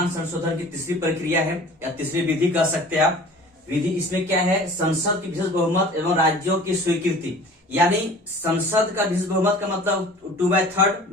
संशोधन की तीसरी प्रक्रिया है, या तीसरी विधि कह सकते हैं आप। विधि इसमें क्या है, संसद की विशेष बहुमत एवं राज्यों की स्वीकृति, यानी संसद का विशेष बहुमत का मतलब 2/3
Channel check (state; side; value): normal; both; correlation 0.44